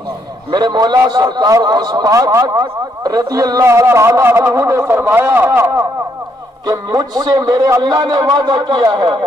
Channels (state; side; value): normal; both; correlation 0.73